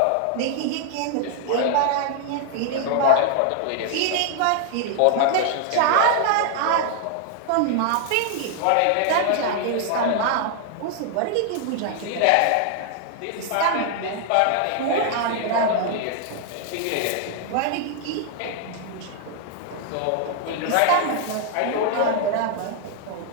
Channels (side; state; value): both; different; correlation 0.00